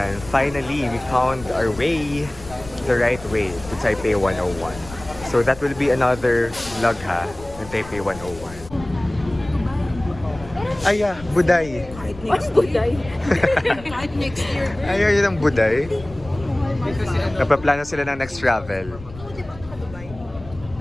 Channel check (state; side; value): noise; left; rumble, 16 dB below the sound